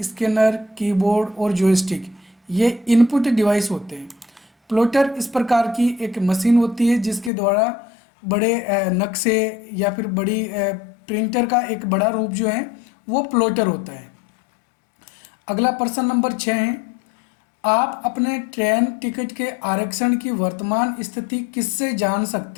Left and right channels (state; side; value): drops out; right; at 7.3 s